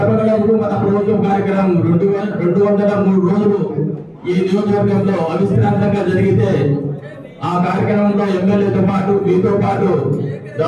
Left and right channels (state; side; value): identical; both; correlation 1.00